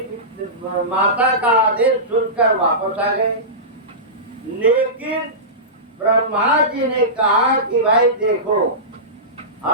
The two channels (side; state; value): both; normal; correlation -0.19